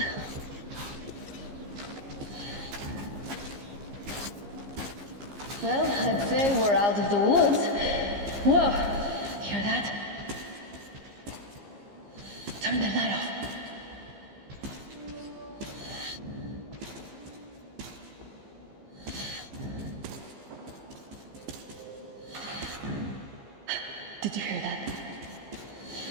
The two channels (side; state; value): left; late; 15 ms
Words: Well, I'd say we're out of the woods. Whoa! Hear that? Turn the light off. Did you hear that?